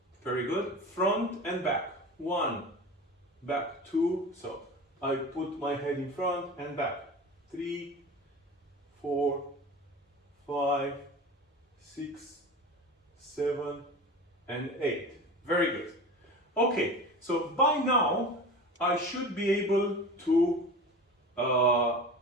Very good. Front and back. 1, back, 2. So I put my head in front and back. 3, 4, 5, 6, 7, and 8. Very good. Okay, so by now I should be able to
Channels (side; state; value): both; normal; correlation 0.33